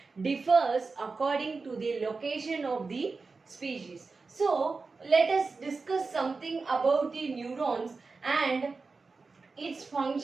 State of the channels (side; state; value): left; quieter; 4.2 dB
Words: differs according to the location of the species. So, let us discuss something about the neurons and its